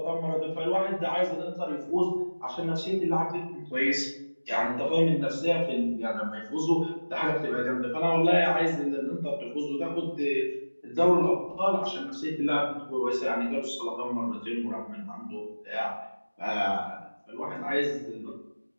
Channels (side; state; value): both; inverted; correlation -1.00